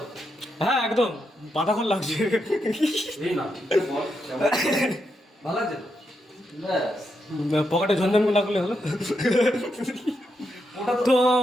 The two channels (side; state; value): both; normal; correlation 0.83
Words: হ্যাঁ একদম পাতাখন লাগছে এই না বল, ভালো লাগছে তো? ব্যাস, পকেটে ঝনঝন লাগলে হলো তো